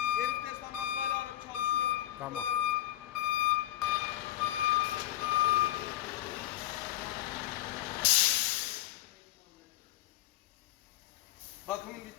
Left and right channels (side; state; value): right; quieter; 14.7 dB